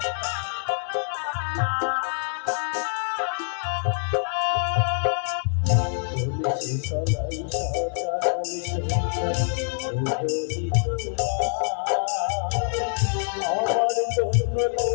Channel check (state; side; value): silent; right; digital silence